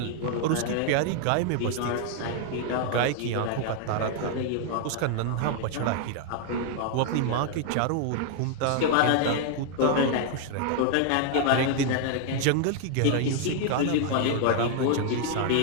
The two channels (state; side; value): different; both; correlation 0.00